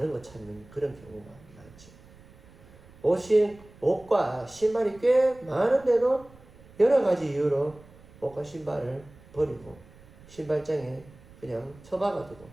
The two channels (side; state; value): right; noise; rumble, 24 dB below the sound